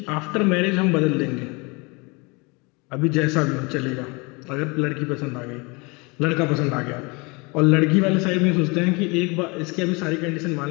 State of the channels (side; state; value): right; quieter; 28.2 dB